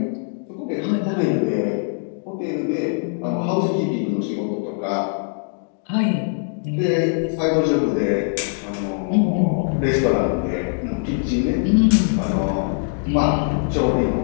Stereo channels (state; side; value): silent; right; 64 dB below the other